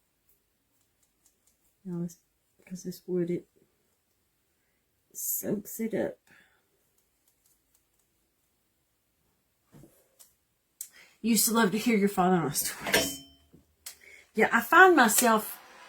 Now, because this wood, it soaks it up. Used to love to hear your father-in-law stories. Yeah, I find myself,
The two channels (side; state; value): both; identical; correlation 1.00